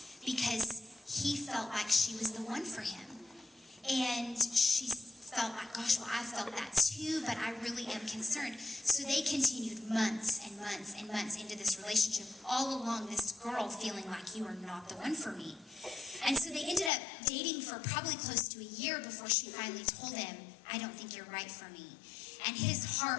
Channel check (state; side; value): drops out; right; at 16.9 s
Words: because he felt like she was the one for him. And she felt like, gosh, well, I felt that too, but I really am concerned. So they continued months and months and months into this relationship, all along this girl feeling like you are not the one for me. And so they ended up dating for probably close to a year before she finally told him, I don't think you're right for me. And his